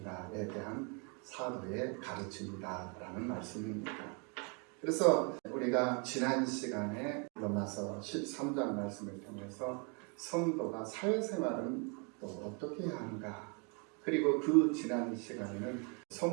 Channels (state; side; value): quieter; left; 35.2 dB